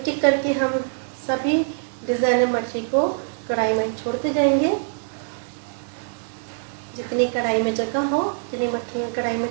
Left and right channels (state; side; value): silent; left; 63 dB below the other